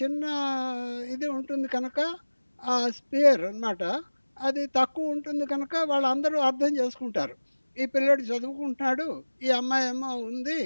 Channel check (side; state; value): both; inverted; correlation -1.00